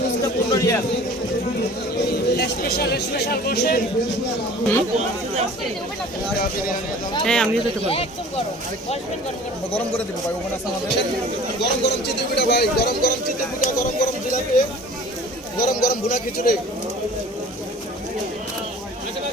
হ্যাঁ আমিও যেতে পারি। গরম করে দিব ভাই, ওখানে আছে আমাদের গরম গরম চিতই পিঠা ভাই, গরম গরম চিতই পিঠা, গরম গরম জিলাপি, গরম গরম ভুনা খিচুড়ি,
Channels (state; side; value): normal; both; correlation 0.45